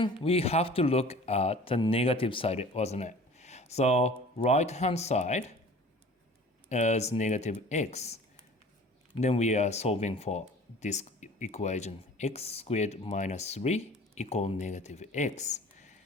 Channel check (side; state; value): both; normal; correlation 0.45